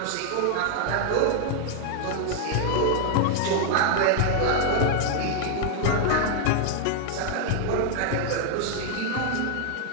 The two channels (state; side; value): different; both; correlation 0.00